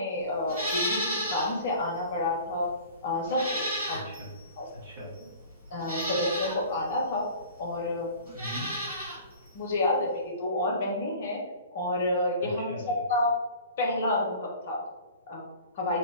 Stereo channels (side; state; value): both; inverted; correlation -0.43